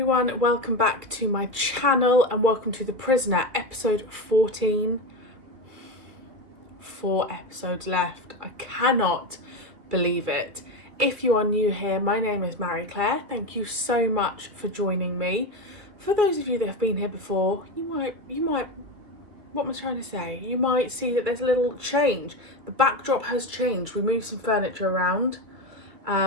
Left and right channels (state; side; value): late; left; 2.7 ms